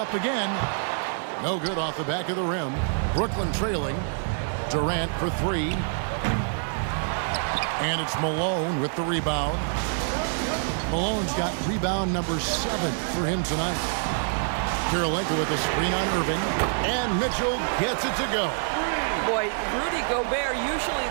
again. No good off the back of the rim. Brooklyn trailing. Durant for 3. And it's Malone with the rebound. Malone's got rebound number 7 for him tonight. Kirilenko with a screen on Irving. And Mitchell gets it to go. Boy, Rudy Gobert, usually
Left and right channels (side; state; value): left; silent; 59 dB below the other